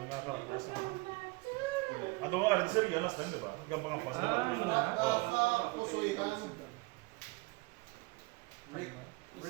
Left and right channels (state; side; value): quieter; left; 25.8 dB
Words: nga karakter sa ano nga, rin sir, yan last time, diba? Yung mga pas, diba? Pusuitan. Break.